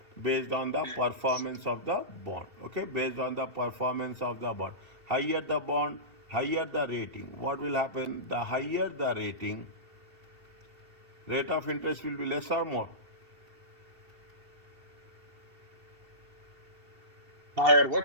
on the performance of the bond. Okay, based on the performance of the bond. Higher the bond, higher the rating. What will happen? The higher the rating, rate of interest will be less or more? Higher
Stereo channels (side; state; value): left; late; 2.7 ms